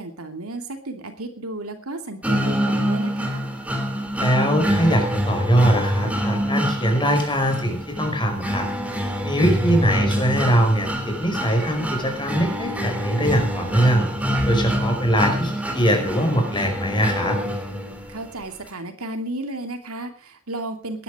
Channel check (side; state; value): both; normal; correlation 0.69